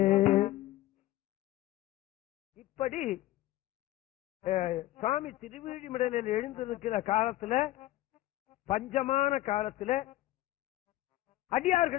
இப்படி சுவாமி திருவிழிமிடலில் எழுந்திருக்கிற காலத்துல, பஞ்சமான காலத்துல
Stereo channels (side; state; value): right; quieter; 15.8 dB